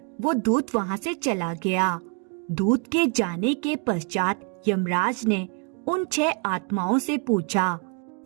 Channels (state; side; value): quieter; left; 36.6 dB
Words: वो दूत वहाँ से चला गया। दूत के जाने के पश्चात यमराज ने उन 6 आत्माओं से पूछा,